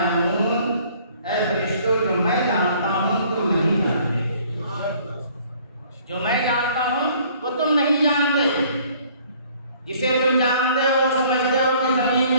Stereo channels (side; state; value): both; inverted; correlation -0.57